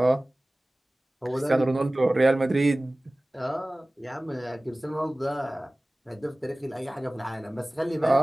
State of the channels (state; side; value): normal; both; correlation 0.98